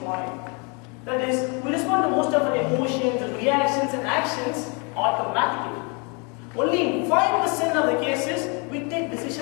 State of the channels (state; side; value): quieter; right; 33.3 dB